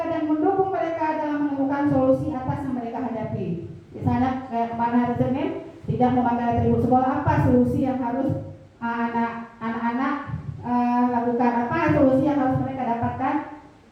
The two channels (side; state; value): both; identical; correlation 1.00